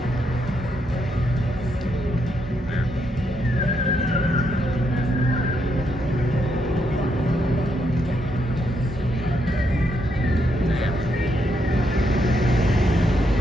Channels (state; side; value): normal; both; correlation 0.78